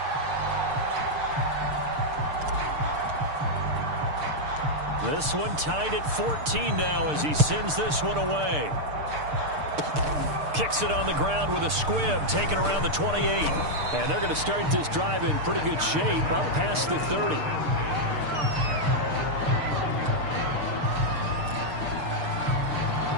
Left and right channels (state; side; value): late; left; 6.7 ms